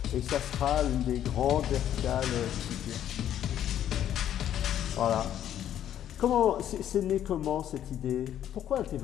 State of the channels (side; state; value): right; quieter; 10.8 dB